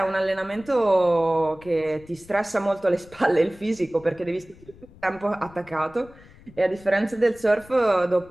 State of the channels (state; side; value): noise; left; rumble, 23 dB below the sound